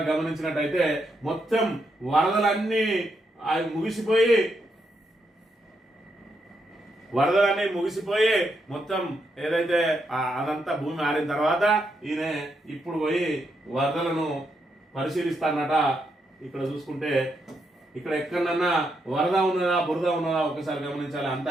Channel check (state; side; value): normal; both; correlation 0.80